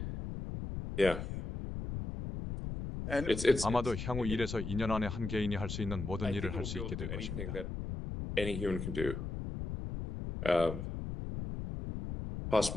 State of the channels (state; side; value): noise; left; rumble, 5 dB below the sound